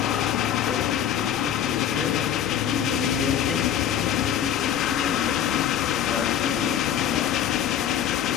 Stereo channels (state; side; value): quieter; right; 10.0 dB